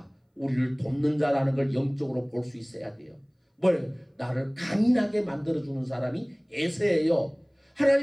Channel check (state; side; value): identical; both; correlation 1.00